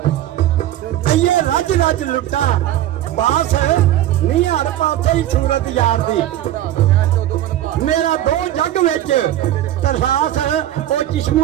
ये रज रज लुटा बास नहीं हर पासे ही सूरत यार दी मेरा दो जग विच तरसास ओ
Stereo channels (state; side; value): quieter; left; 13.1 dB